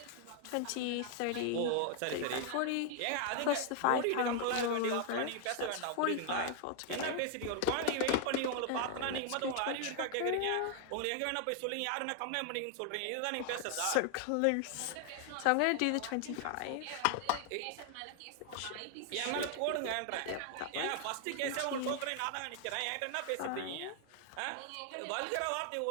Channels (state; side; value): different; both; correlation 0.00